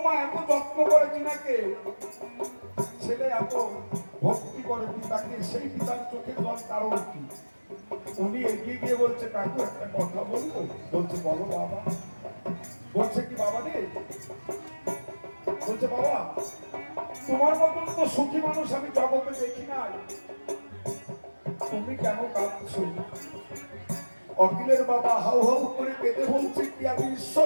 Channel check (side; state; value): both; inverted; correlation -1.00